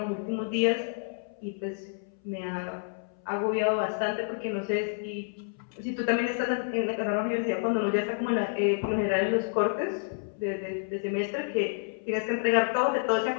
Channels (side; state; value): right; silent; 58 dB below the other